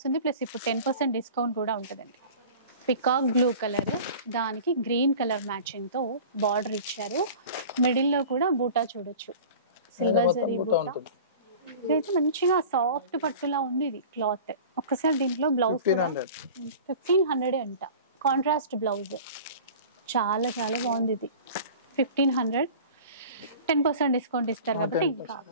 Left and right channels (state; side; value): inverted; both; correlation -0.40